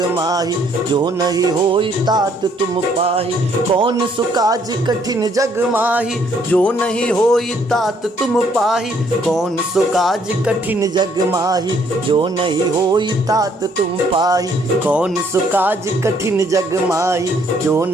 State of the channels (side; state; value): both; normal; correlation 0.66